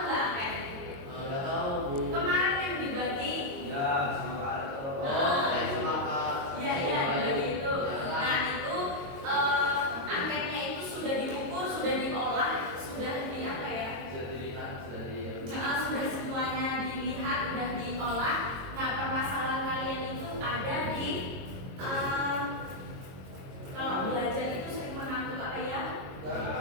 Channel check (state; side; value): late; left; 22 ms